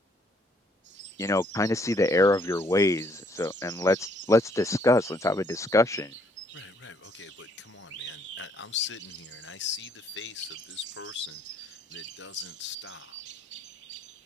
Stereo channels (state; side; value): normal; both; correlation 0.66